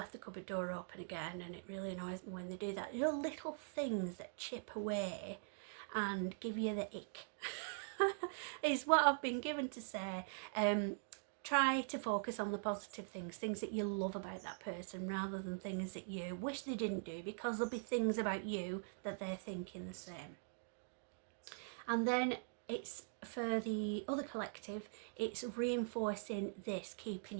the cupboard door open again, and it really annoys me when they do that. There are little things that chip away and give you the ick is what I've been given to say. try to focus on the positive things that you love about that person, rather than things that you wish they didn't do, because there'll be things about you that they're thinking the same. And then it's for the other collective, it's reinforcing this, keeping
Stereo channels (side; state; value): left; silent; digital silence